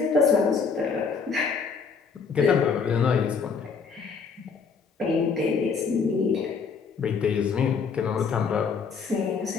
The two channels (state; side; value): quieter; right; 5.5 dB